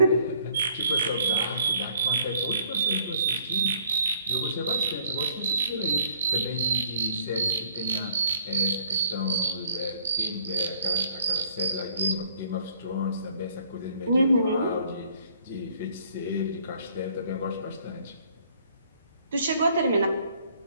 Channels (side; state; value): both; inverted; correlation -0.61